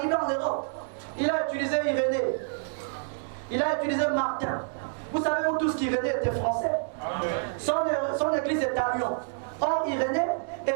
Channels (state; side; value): silent; left; digital silence